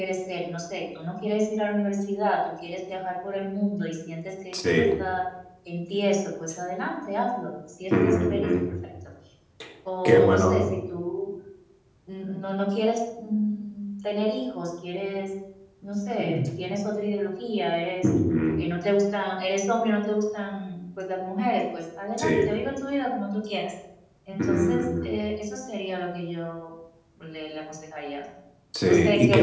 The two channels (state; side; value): identical; both; correlation 1.00